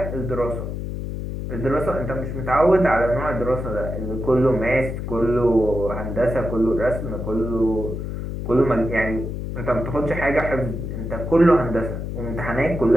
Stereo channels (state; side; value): noise; left; hum, 5 dB below the sound